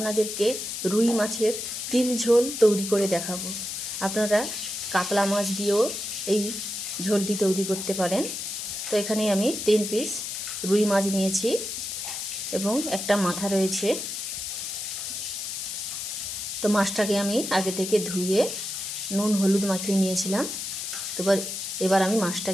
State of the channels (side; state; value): left; noise; hiss, 5 dB below the sound